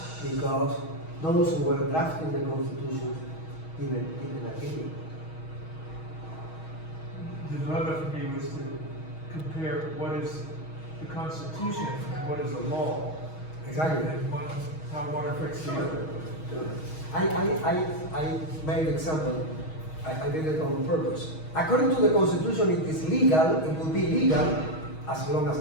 because those who were drafting the Constitution didn't agree. The dilemma for me was to compare what is the Constitution and what is a law. Exactly. And how one affects the other. I made an example. I did it on purpose. According to the Constitution, it is legal, it will be legal as long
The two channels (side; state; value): right; late; 6.3 ms